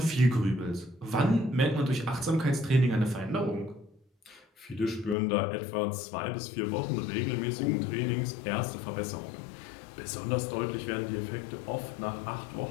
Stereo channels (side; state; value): right; drops out; at 5.2 s